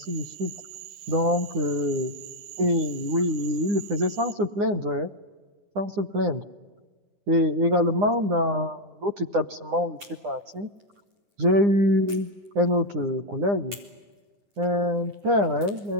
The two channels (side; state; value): left; late; 9.5 ms